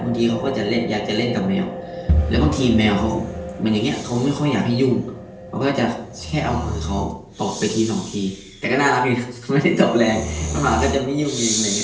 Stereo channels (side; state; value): both; identical; correlation 1.00